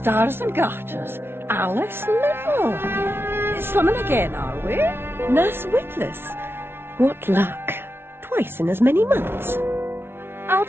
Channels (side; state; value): left; late; 0.11 ms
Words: and garters, Alice Little. Slumming again, are we? Nurse Witless. What luck. Twice in as many months.